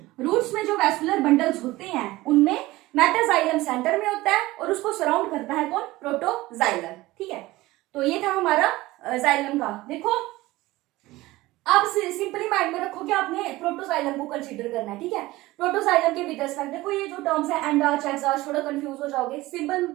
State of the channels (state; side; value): quieter; left; 18.8 dB